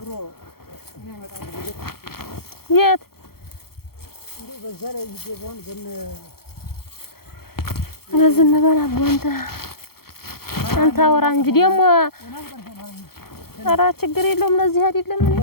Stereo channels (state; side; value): late; right; 0.94 ms